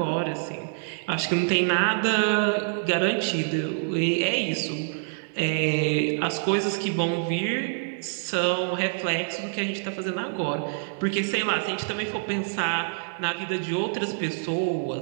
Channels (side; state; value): left; silent; digital silence